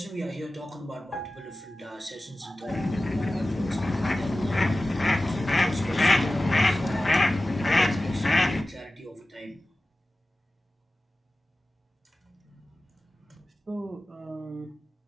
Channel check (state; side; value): normal; both; correlation 0.95